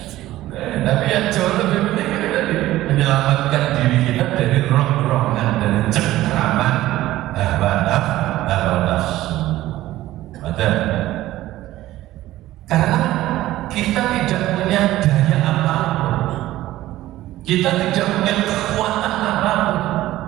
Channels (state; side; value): quieter; left; 15.5 dB